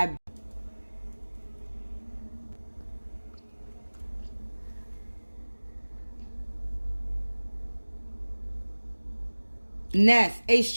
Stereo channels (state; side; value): inverted; both; correlation -1.00